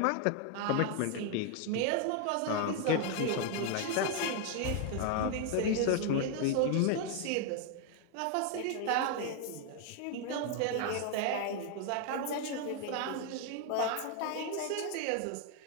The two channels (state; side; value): different; both; correlation 0.00